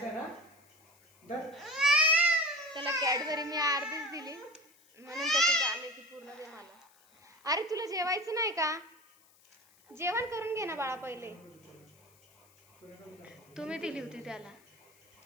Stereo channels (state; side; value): noise; left; hiss, 30 dB below the sound